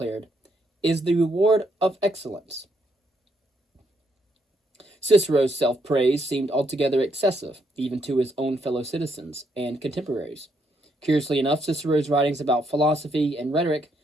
is the reward of excellence. Cicero's self-praise seemed altogether excessive, even to his own fellow citizens and contemporaries. Curiously enough, Cicero's writings about philosophy and rhetoric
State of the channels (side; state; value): both; normal; correlation 0.75